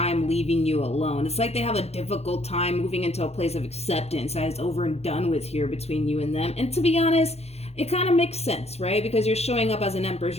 leaving you alone. It's like they have a difficult time moving into a place of acceptance that is over and done with here between you and them. And to be honest, it kind of makes sense, right? Because you're showing up as an empress.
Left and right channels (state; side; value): late; right; 0.30 ms